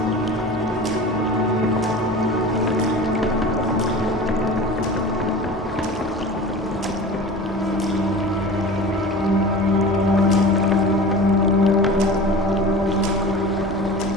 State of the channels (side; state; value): both; normal; correlation 0.36